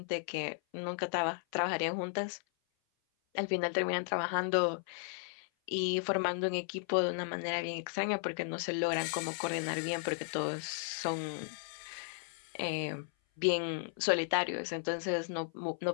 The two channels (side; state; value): right; silent; 54 dB below the other